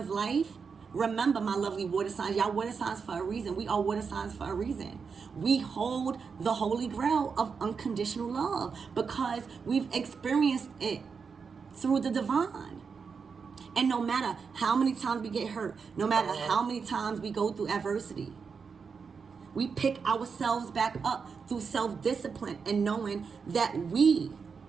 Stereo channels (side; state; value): left; quieter; 5.6 dB